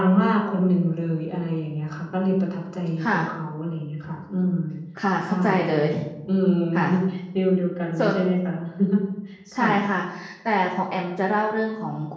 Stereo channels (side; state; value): both; identical; correlation 1.00